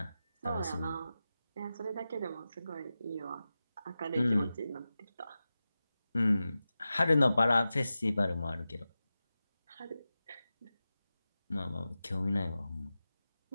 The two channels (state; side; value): inverted; both; correlation -0.94